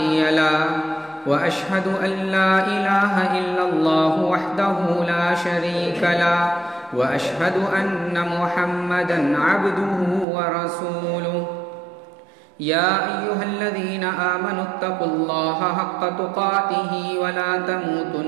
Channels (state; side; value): drops out; left; at 10.2 s